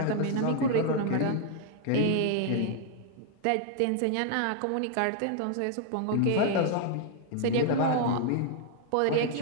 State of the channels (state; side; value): different; both; correlation 0.00